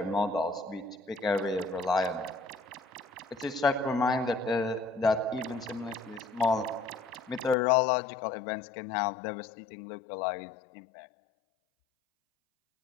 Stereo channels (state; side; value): drops out; right; at 7.6 s